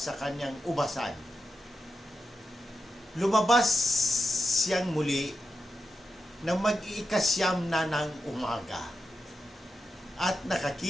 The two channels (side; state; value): both; normal; correlation 0.89